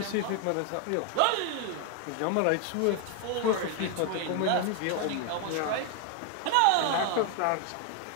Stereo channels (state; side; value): different; both; correlation 0.01